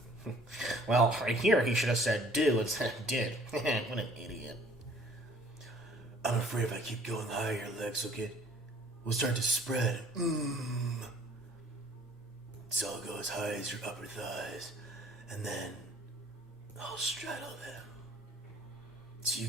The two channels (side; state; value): both; normal; correlation 0.55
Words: Well, right here he should have said do instead of did. What an idiot. I'm afraid if I keep going higher, your legs will start to spread. So I'll go as high as your upper thighs, and then I'll straddle them. So you